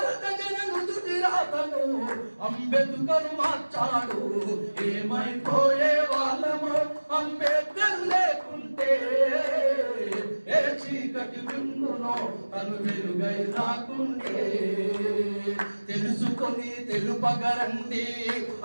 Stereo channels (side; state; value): both; inverted; correlation -1.00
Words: జన నుదుటి రాతను అంబేద్కరు మార్చాడు ఏమైపోయే వాళ్ళము అంబేద్కర్ లేకుంటే ఏ చీకటి బిందునో తను వెలుగై రాకుంటే తెలుసుకొని తెలుపగరండి